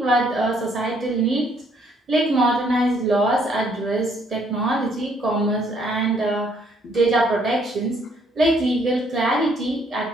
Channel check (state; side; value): normal; both; correlation 0.67